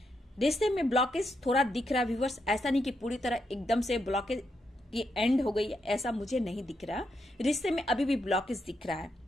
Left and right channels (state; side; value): normal; both; correlation 0.81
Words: रिश्ते में ब्लॉकेज थोड़ा दिख रहा है व्यूवर्स, ऐसा नहीं कि पूरी तरह एकदम से ब्लॉकेज की एंड हो गई है, ऐसा मुझे नहीं दिख रहा। रिश्ते में अभी भी ब्लॉकेज दिख रहा है,